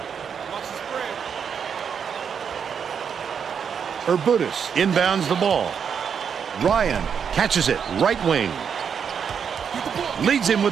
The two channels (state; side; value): quieter; left; 7.1 dB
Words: Urbutis inbounds the ball. Ryan catches it, right wing. Leads him